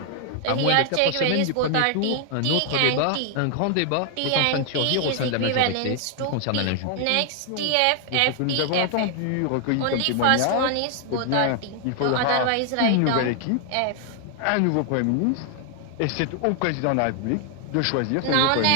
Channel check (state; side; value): different; both; correlation 0.00